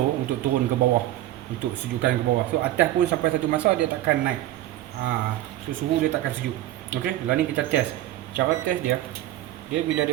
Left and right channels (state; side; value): quieter; left; 14.4 dB